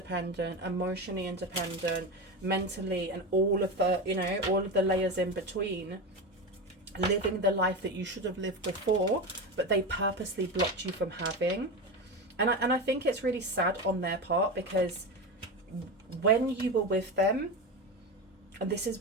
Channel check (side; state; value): both; normal; correlation 0.20